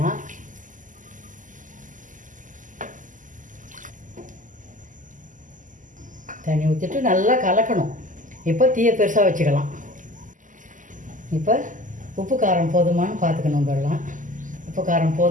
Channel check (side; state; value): left; late; 0.38 ms